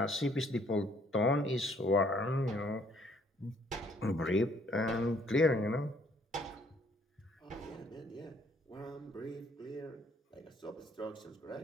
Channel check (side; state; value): both; normal; correlation 0.64